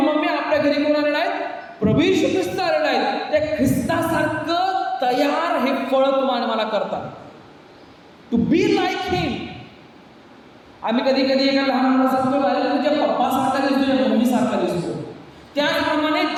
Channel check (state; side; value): identical; both; correlation 1.00